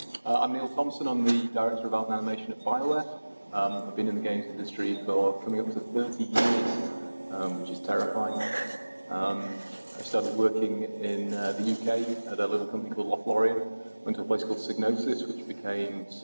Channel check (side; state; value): both; inverted; correlation -1.00